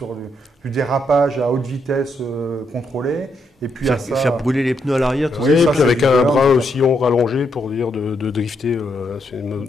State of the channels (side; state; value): both; normal; correlation 0.78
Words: du dérapage à haute vitesse contrôlé. Et puis faire brûler les pneus à l'arrière, tout ça. Oui, et puis avec un bras aussi rallongé pour dire de drifter. C'est une